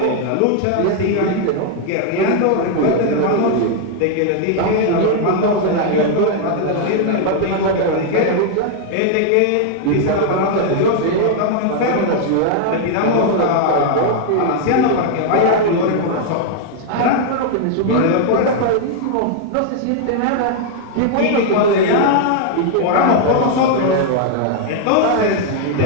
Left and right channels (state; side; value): different; both; correlation 0.00